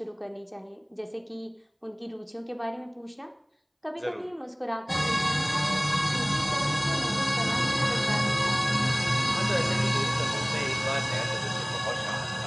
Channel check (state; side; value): identical; both; correlation 1.00